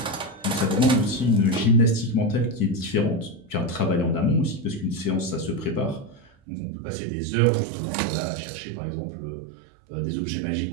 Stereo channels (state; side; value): drops out; left; at 6.3 s